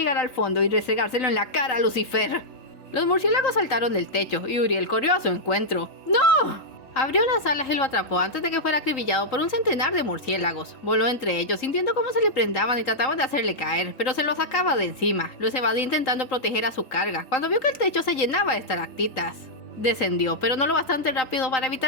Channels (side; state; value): right; late; 3.8 ms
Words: al fondo y restregárselo en la cara a Lucifer. Los murciélagos saltaron del techo y Uriel corrió a su encuentro. ¡No! Abrió las alas y lo atrapó antes de que fuera acribillado por un centenar de murciélagos. Voló entre ellos, sintiendo cómo se le prendaban y trataban de hacerle caer, pero se los sacaba de encima. Los evadía intentando proteger a su carga, cuando vio que el techo se llenaba de estalactitas. Descendió, pero no lo bastante rápido para